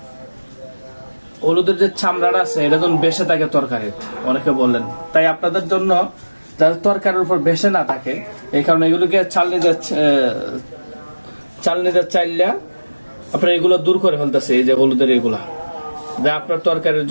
হলুদের যে চামড়াটা আছে এটা যখন বেসে থাকে তরকারি, অনেকে বললেন। তাই আপনাদের জন্য যাতে তরকারির উপর বেসে না থাকে এই কারণে এগুলোকে চালনিতে চাইলে আপনার এগুলো দূর করে ফেলতেছে। এই যে হলুদের এগুলা যা আপনার তরকারির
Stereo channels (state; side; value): inverted; both; correlation -1.00